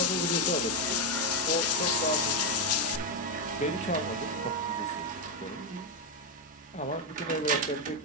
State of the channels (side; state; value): both; normal; correlation 0.06